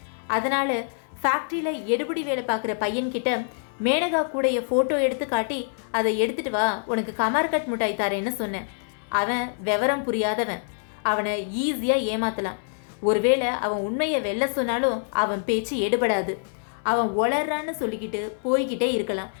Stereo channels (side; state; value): right; silent; 61 dB below the other